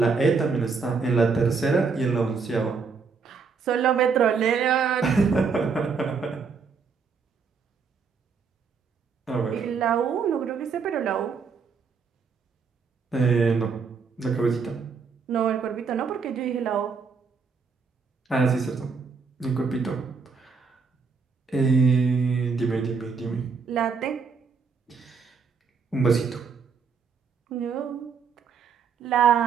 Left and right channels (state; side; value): quieter; left; 5.4 dB